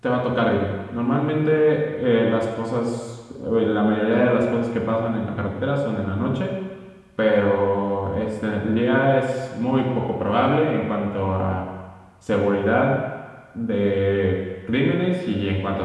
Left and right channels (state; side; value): identical; both; correlation 1.00